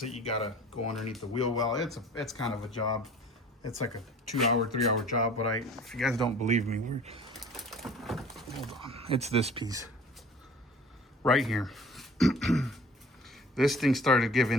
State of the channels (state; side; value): normal; both; correlation 0.46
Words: it, you gotta go underneath the wheel well. It's kind of a job. It's like a 2-hour, 3-hour job, but if you guys don't believe me, hold on. It's this piece right here. This thing started